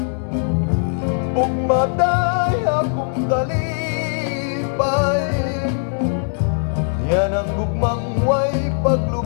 Ug maday akong kalipay, yan ang gugmang way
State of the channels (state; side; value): silent; right; 66 dB below the other